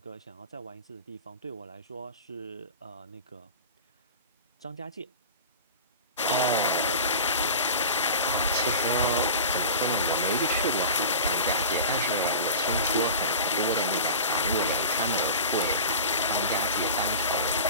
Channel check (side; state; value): both; inverted; correlation -0.35